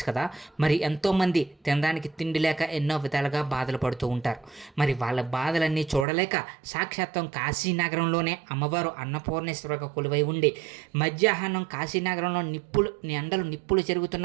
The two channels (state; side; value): drops out; left; at 6.1 s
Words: కదా. మరి ఎంతోమంది తినడానికి తిండి లేక ఎన్నో విధాలుగా బాధలు పడుతూ ఉంటారు. మరి వాళ్ళ బాధలన్నీ చూడలేక సాక్షాత్తం కాశీనగరంలోనే అమ్మవారు అన్నపూర్ణేశ్వరగా కొలువై ఉండి మధ్యాహ్నం కాశీనగరంలో నిప్పులు